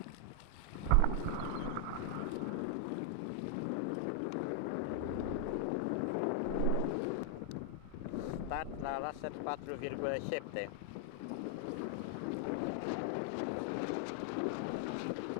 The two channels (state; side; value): different; both; correlation 0.00